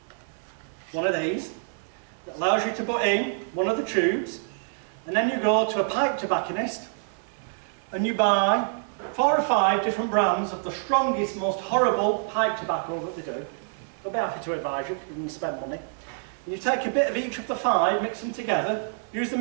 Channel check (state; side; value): silent; left; 60 dB below the other